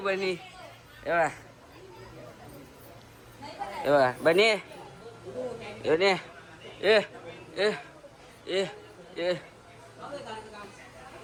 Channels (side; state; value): both; identical; correlation 1.00